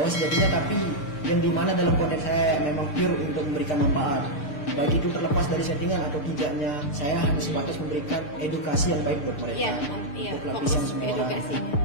sejatinya, tapi yang dimana dalam konten saya memang pure untuk memberikan manfaat. Baik itu terlepas dari settingan atau tidaknya, saya hanya sebatas memberikan edukasi yang baik buat mereka. Iya, untuk lapisan semua orang,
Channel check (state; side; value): late; right; 6.7 ms